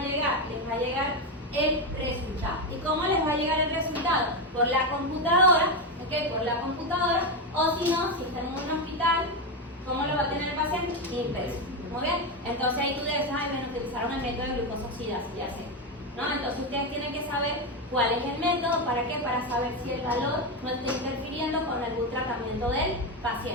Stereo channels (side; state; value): both; normal; correlation 0.10